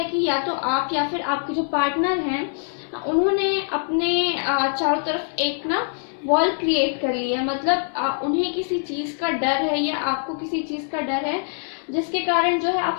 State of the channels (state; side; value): silent; right; 63 dB below the other